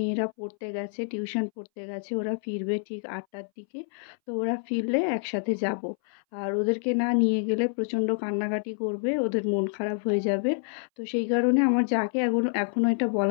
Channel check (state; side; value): silent; right; 60 dB below the other